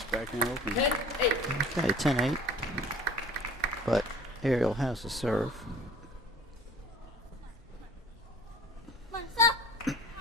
backhand open. 10-8. Okay, 10-8. But Ariel has the serve.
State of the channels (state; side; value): normal; both; correlation 0.46